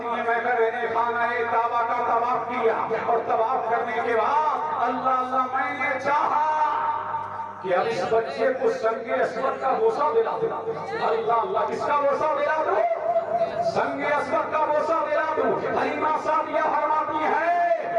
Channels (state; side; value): identical; both; correlation 1.00